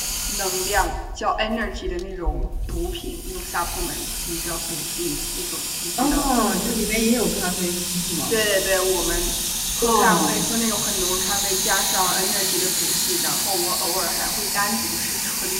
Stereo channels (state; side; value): identical; both; correlation 1.00